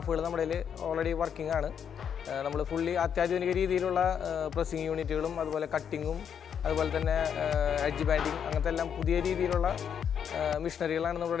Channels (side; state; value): right; quieter; 8.0 dB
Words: നമ്മുടെ ഓൾറെഡി വർക്കിംഗ് ആണ്. നമ്മൾ ഫുള്ളി അത്യാധുനിക രീതിയിലുള്ള പ്രസ്സിങ് യൂണിറ്റുകളും അതുപോലെ കട്ടിങ്ങും അതുപോലെ തന്നെ എഡ്ജ് ബാൻഡിങ് അങ്ങനത്തെ എല്ലാം പുതിയ രീതിയിലുള്ള മെഷീനറികളാണ്